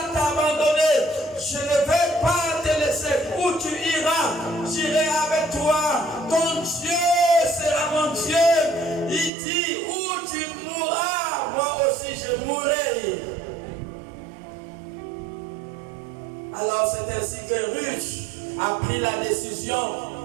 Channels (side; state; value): left; drops out; at 9.3 s